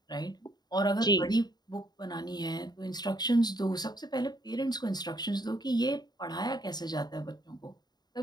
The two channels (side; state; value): right; late; 0.20 ms